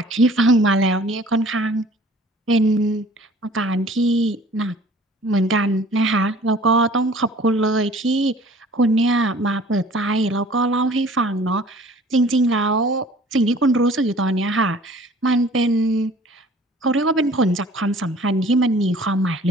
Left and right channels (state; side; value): normal; both; correlation 0.50